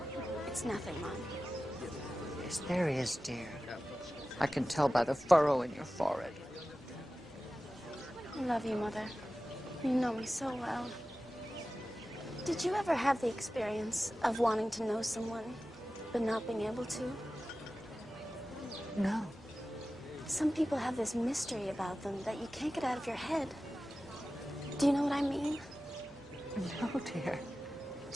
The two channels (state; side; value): normal; both; correlation 0.95